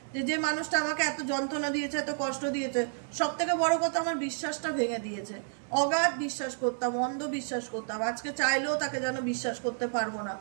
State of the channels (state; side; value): silent; left; 57 dB below the other